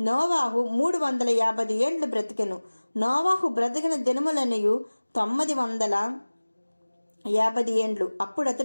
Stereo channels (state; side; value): inverted; both; correlation -1.00